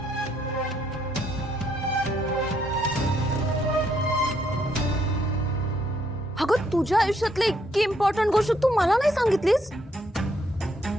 अगं तुझ्या आयुष्यातली इतकी इम्पॉर्टंट गोष्ट तू मला नाही सांगितलीस?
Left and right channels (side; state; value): both; normal; correlation 0.72